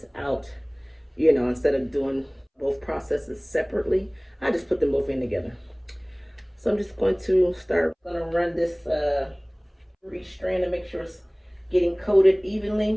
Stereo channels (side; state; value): both; identical; correlation 1.00